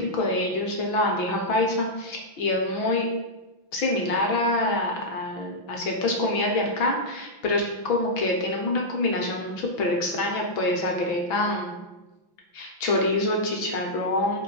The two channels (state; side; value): late; right; 6.1 ms